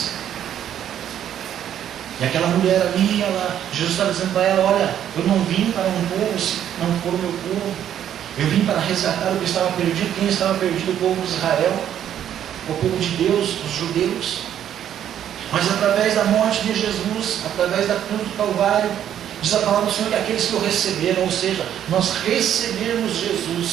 E aquela mulher ali, Jesus estava dizendo para ela: olha, eu não vim para um povo se não for o meu povo. Eu vim para resgatar o que estava perdido. Quem estava perdido? O povo de Israel, o povo de Deus, os judeus. Mas através da morte de Jesus, através da cruz do Calvário, diz a palavra do Senhor que aqueles que o receberam, ou seja, nós recebermos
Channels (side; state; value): left; quieter; 10.3 dB